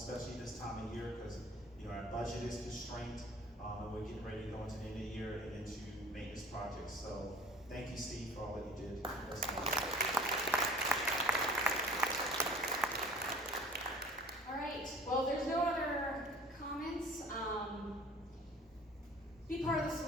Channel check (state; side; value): normal; both; correlation 0.47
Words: this time of year, because you know our budget is constrained, and we're getting ready to go into the end of the year and into maintenance projects. So thank you, Steve, for all that you did. All right, well, there's no other comments. Be part of the